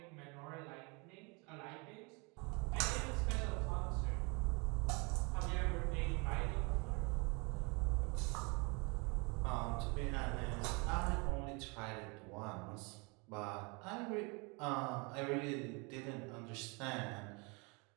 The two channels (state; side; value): quieter; left; 30.2 dB